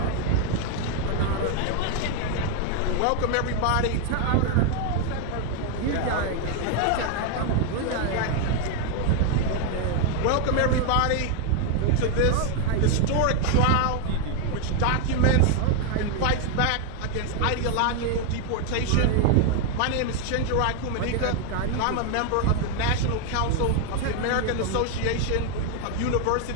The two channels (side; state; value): both; different; correlation 0.00